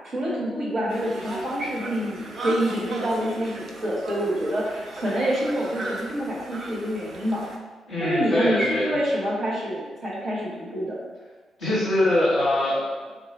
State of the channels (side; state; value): both; normal; correlation 0.83